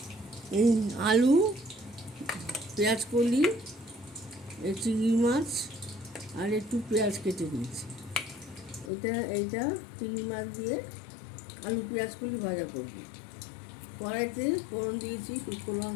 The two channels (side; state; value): right; drops out; at 8.9 s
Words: এই আলু, পেঁয়াজ কলি, চিংড়ি মাছ আর একটু পেঁয়াজ কেটে দিয়েছি। এইটা চিংড়ি মাছ দিয়ে আলু পেঁয়াজ কলি ভাজা করব। কড়াইতে ফোড়ন দিয়েছি শুকনো